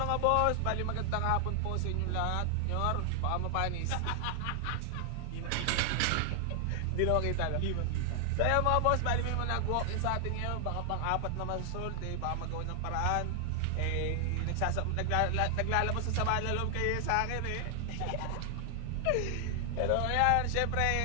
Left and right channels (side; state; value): both; different; correlation 0.00